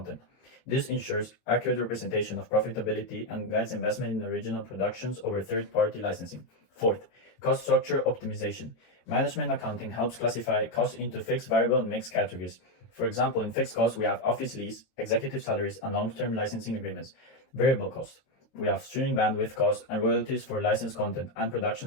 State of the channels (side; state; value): right; late; 23 ms